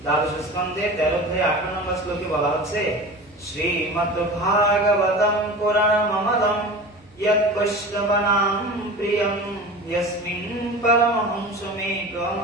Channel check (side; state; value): both; normal; correlation 0.33